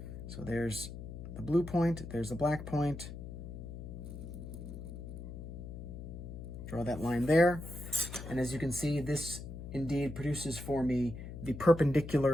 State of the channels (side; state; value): left; noise; hum, 9 dB below the sound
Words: So there's the blue point, there's the black point. Draw that line there. And as you can see, this indeed produces for me the